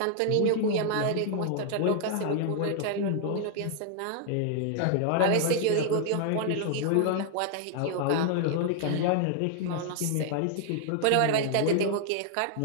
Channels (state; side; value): different; both; correlation 0.00